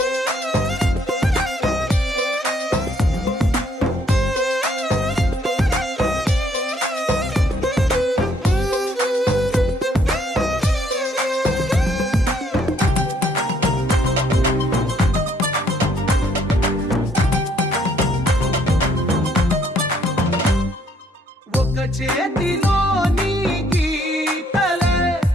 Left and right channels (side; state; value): both; normal; correlation 0.67